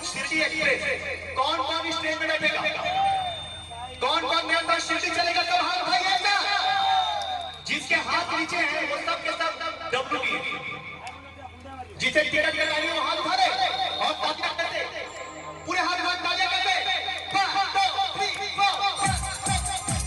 Shirdi express. कौन कौन इस ट्रेन में बैठेगा? कौन कौन मेरे साथ शिरडी चलेगा? सब हाथ उठाइए। जिसके हाथ नीचे हैं वो सब के सब डब्ल्यू जिसे टिकट लगानी वो हाथ उठा रहे और तालियां करते, पूरे हाथ तालियां करते। 1 2 3 4।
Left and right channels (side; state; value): both; identical; correlation 1.00